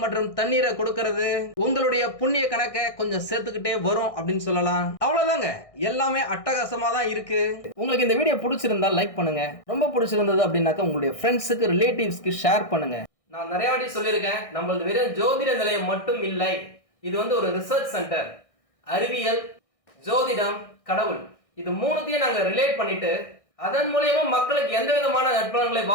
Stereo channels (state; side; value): late; right; 1.6 ms